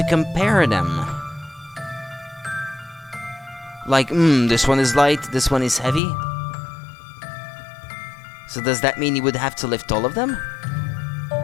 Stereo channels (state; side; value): drops out; right; at 6.0 s